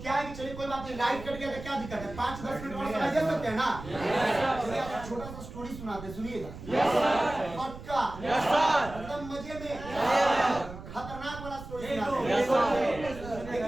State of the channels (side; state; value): right; noise; rumble, 13 dB below the sound